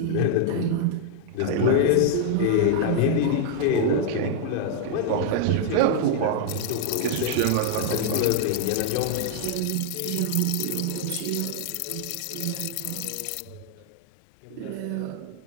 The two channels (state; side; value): different; both; correlation 0.00